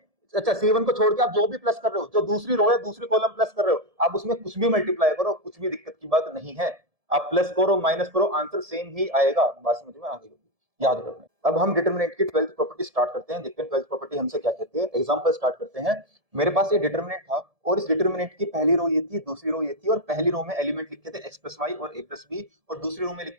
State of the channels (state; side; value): late; left; 1.7 ms